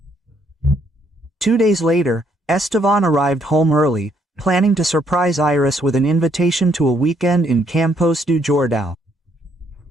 2 days later, Estevan arrived home early, planning to surprise Iris with an invitation to a weekend in Campos do Jordão.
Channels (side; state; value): both; normal; correlation 0.70